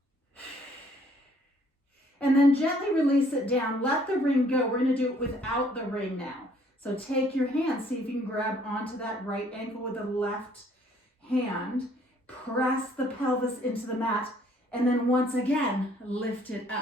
And then gently release it down. Let the ring go. We're going to do it without the ring now. So take your hand. See if you can grab onto that right ankle with the left hand. Press the pelvis into the mat. And then once again, lift it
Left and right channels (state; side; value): normal; both; correlation 0.62